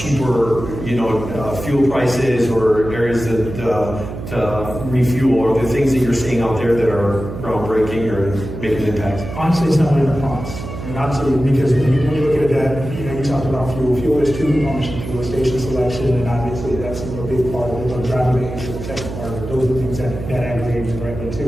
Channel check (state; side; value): noise; right; hum, 9 dB below the sound